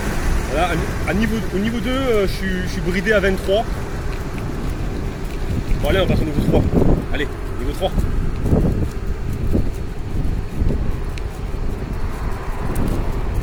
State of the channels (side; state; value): both; identical; correlation 1.00